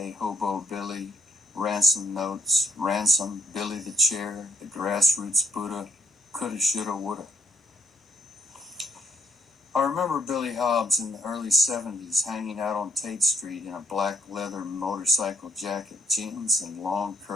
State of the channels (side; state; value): both; normal; correlation 0.67